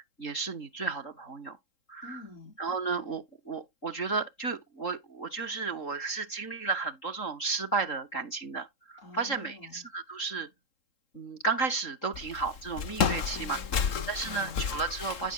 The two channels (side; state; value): right; late; 3.7 ms